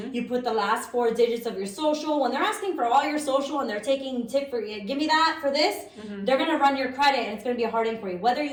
you put the last 4 digits of your social. When they're asking for all your social and they're taking tip for you, give me that for this, they're going to run your credit and it's going to be a hard inquiry, whether you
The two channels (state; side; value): identical; both; correlation 1.00